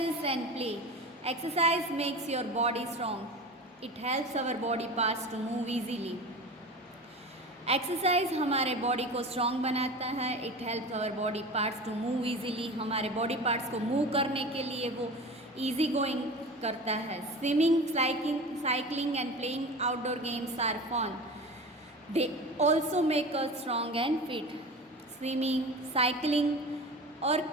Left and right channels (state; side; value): normal; both; correlation 0.32